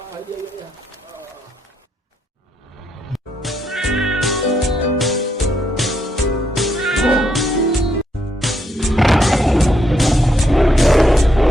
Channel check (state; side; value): normal; both; correlation 0.76